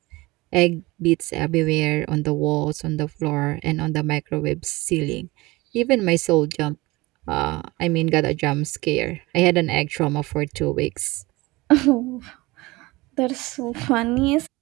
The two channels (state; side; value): quieter; left; 21.7 dB